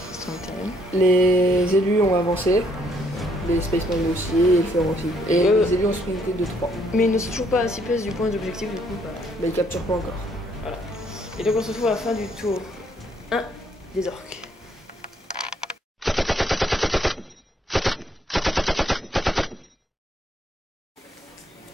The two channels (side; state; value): both; normal; correlation 0.69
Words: Les élus ont avancé, les Spaceman aussi, et le Fer aussi. Et les élus ont sprinté de 3. Mais ils ne sont toujours pas à 6 places du point d'objectif, du coup. Mais ils capturent pas encore. Voilà. Et donc on se retrouve à la fin du tour 1 des orques.